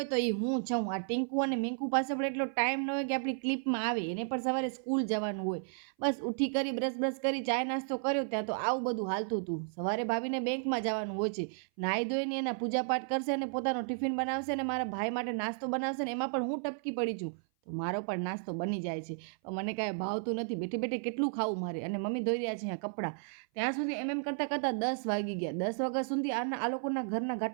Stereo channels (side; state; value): left; silent; 56 dB below the other